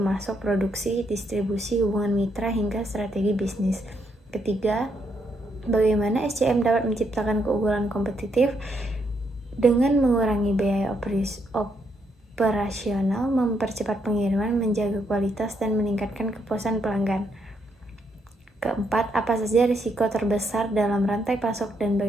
produksi, distribusi, hubungan mitra, hingga strategi bisnis. Ketiga, bagaimana SCM dapat menciptakan keunggulan kompetitif dengan mengurangi biaya operasional, mempercepat pengiriman, menjaga kualitas, dan meningkatkan kepuasan pelanggan. Keempat, apa saja risiko terbesar dalam rantai pasok dan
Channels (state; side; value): normal; both; correlation 0.76